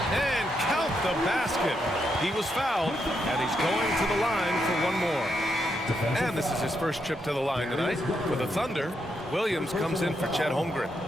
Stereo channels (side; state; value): both; normal; correlation 0.81